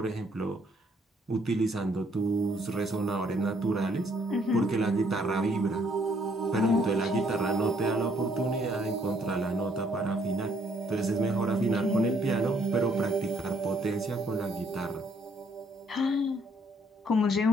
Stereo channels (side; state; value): both; normal; correlation 0.67